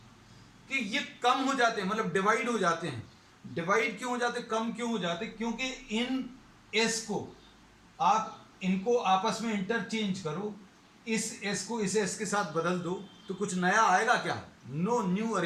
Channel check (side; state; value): both; identical; correlation 1.00